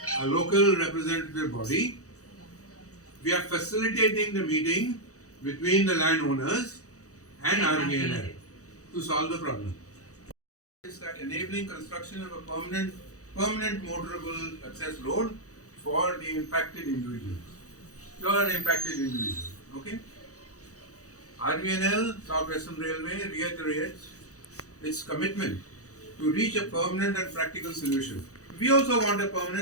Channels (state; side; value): late; right; 0.65 ms